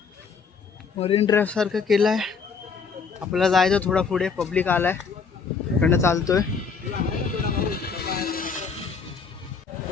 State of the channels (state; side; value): quieter; right; 5.5 dB